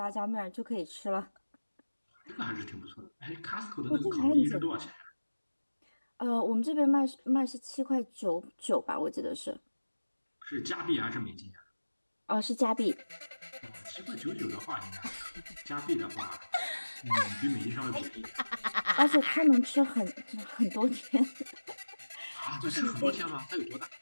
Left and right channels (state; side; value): inverted; both; correlation -1.00